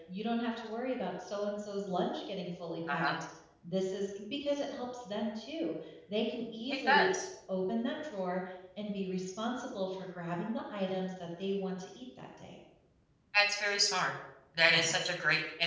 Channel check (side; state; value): both; identical; correlation 1.00